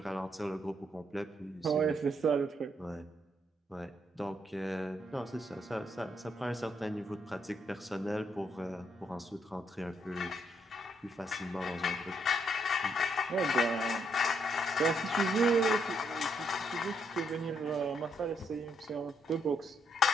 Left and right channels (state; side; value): normal; both; correlation 0.75